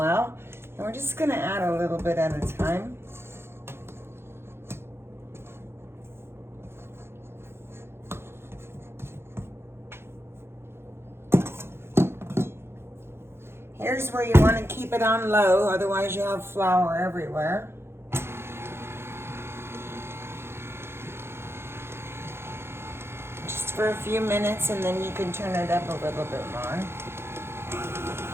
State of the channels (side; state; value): left; late; 0.12 ms